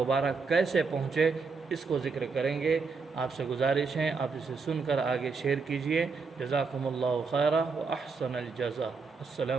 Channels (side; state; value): left; quieter; 4.7 dB